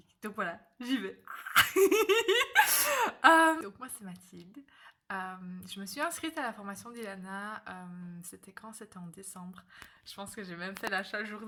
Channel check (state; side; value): identical; both; correlation 1.00